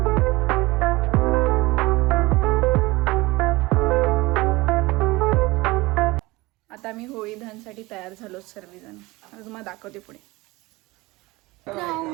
आता मी होळी दहनसाठी तयार झालो सर्वजण. आता तुम्हाला दाखवते पुढे.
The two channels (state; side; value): quieter; left; 21.6 dB